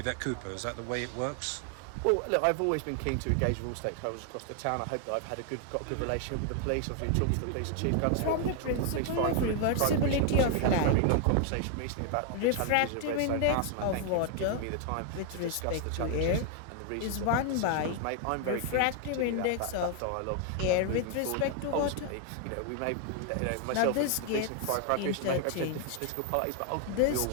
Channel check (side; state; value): both; different; correlation 0.00